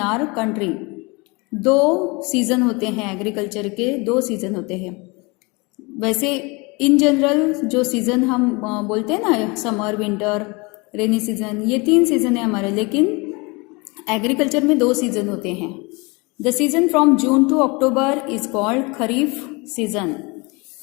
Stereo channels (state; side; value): quieter; right; 27.3 dB